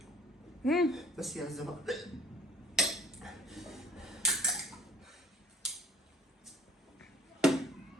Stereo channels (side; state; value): both; normal; correlation 0.55